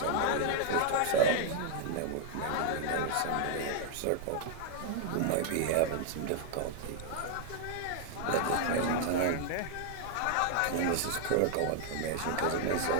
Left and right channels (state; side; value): different; both; correlation -0.01